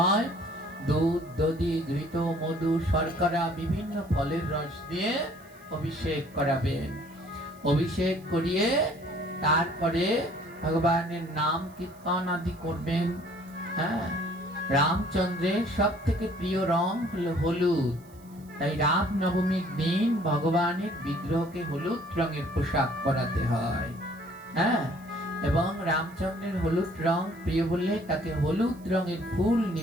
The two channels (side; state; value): right; noise; hiss, 27 dB below the sound